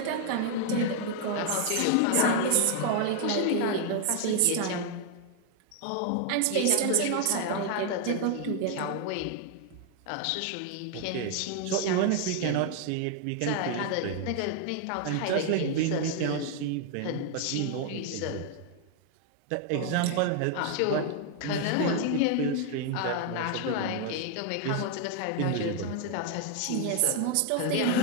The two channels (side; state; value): both; different; correlation 0.00